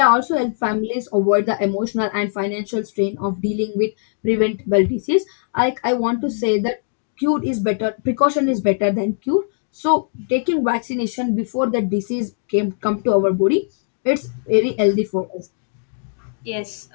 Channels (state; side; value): silent; right; digital silence